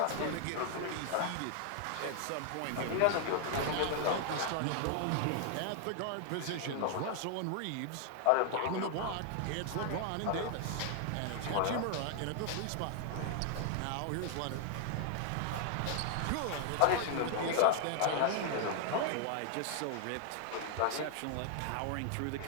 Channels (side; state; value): both; different; correlation 0.00